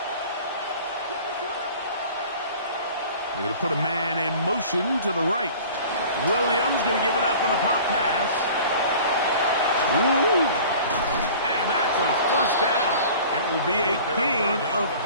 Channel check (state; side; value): inverted; both; correlation -0.44